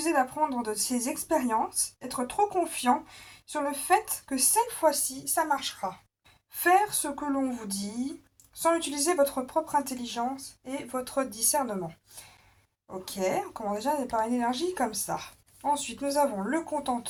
d'apprendre de ses expériences, être trop confiant sur le fait que cette fois-ci, ça marchera. Faire ce que l'on vous dit sans utiliser votre propre intelligence et votre discernement. Ok, on commence déjà par une énergie comme ça. Ensuite, nous avons le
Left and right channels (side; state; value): both; identical; correlation 1.00